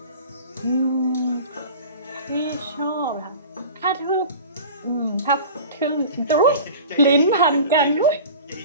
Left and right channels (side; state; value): both; inverted; correlation -0.38